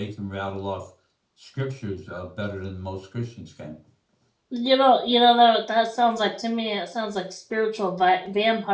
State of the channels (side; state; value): both; identical; correlation 1.00